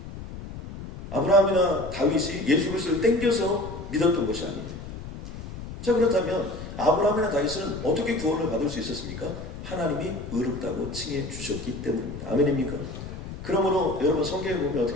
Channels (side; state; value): left; noise; rumble, 11 dB below the sound